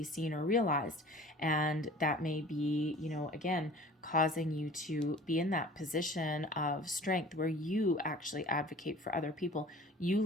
seen or realized. And that may be, again, causing you to be in that position of strength where you actually advocate for other people. You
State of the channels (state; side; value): normal; both; correlation 0.44